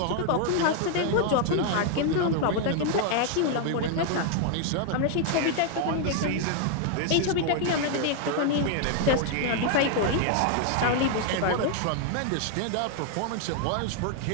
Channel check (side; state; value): both; different; correlation 0.00